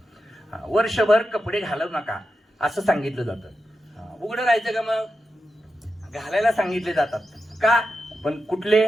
वर्षभर कपडे घालू नका असं सांगितलं जातं. उघडं राहायचं का, मग घालायला सांगितले जातात का, पण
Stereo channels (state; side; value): normal; both; correlation 0.90